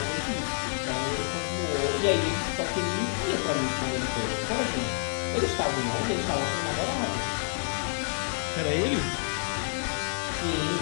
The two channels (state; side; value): silent; right; digital silence